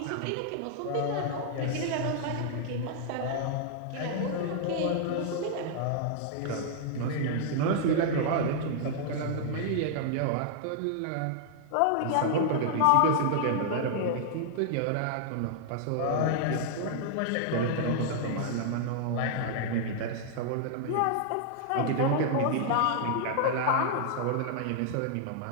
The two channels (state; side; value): different; both; correlation -0.01